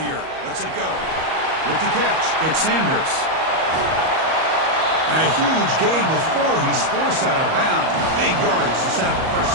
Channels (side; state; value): left; late; 38 ms